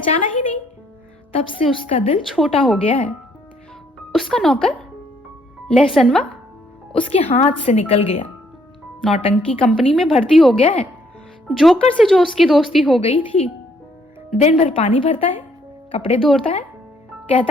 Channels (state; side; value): normal; both; correlation 0.68